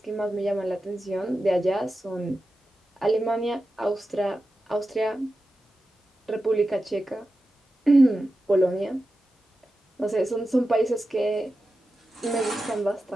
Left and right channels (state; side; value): normal; both; correlation 0.92